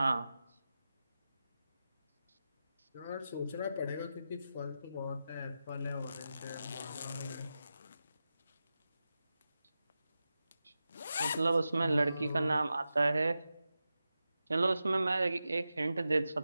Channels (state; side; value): inverted; both; correlation -0.91